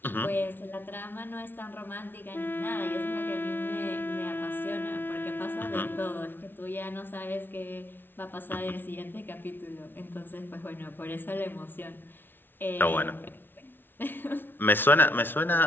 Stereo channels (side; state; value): right; late; 0.10 ms